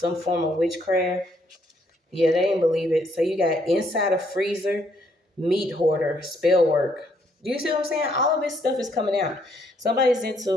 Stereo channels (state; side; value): normal; both; correlation 0.70